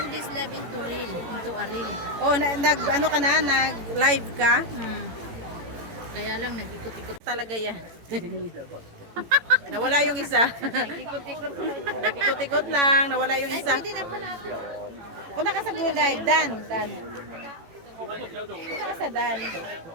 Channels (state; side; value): late; left; 18 ms